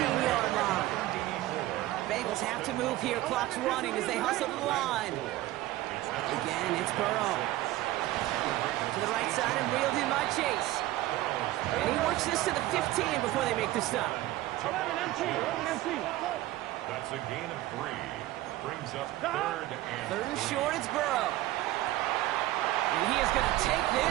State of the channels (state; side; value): quieter; left; 16.2 dB